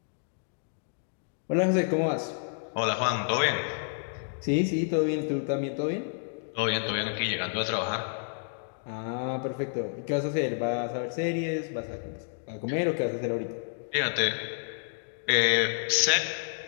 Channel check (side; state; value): right; silent; digital silence